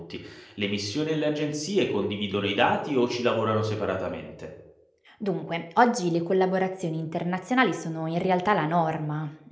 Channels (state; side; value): identical; both; correlation 1.00